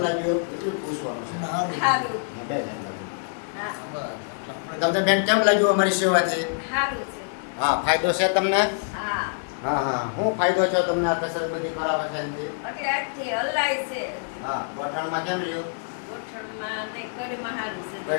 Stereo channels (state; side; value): silent; right; digital silence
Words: લાગ્યું એટલું પૂછવાનું છે. બે જણ લાગ્યું. તમને બેન કેમ લાગ્યું અમારી સેવાથી? હા, ફાયદો છે તમને? હા. શું ફાયદો છો તમને આ કસરત બધી કરાવે છે એનાથી? હા, ગોઠણમાં કેમ રહ્યું? કમરમાં